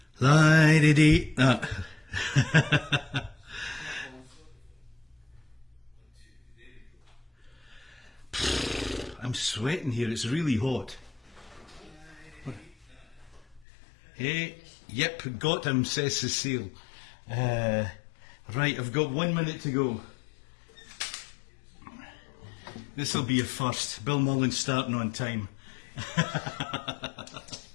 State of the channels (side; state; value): right; drops out; at 13.7 s